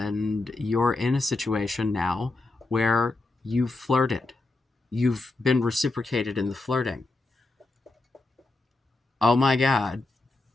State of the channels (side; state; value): right; quieter; 3.1 dB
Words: you're in a situation now where you've flirted, you've been reciprocated in the flirting. Oh my God,